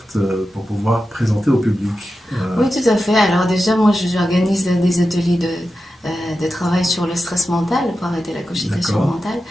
pour pouvoir présenter au public? Oui, tout à fait. Alors déjà, moi, j'organise des ateliers de travail sur le stress mental pour arrêter la cogitation D'accord. mentale.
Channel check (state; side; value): normal; both; correlation 0.91